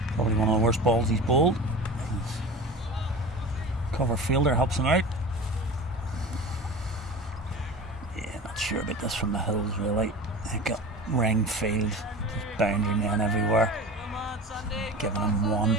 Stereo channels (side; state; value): both; normal; correlation 0.33